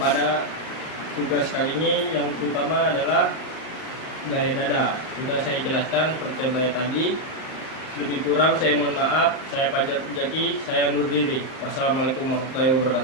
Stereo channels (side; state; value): right; late; 38 ms